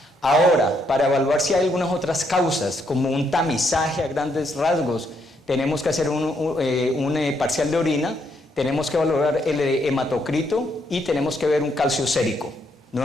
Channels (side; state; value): both; normal; correlation 0.74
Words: Ahora, para evaluar si hay algunas otras causas, como un tamizaje a grandes rasgos, tenemos que hacer un parcial de orina, tenemos que evaluar el hematocrito y tenemos que ver un calcio sérico.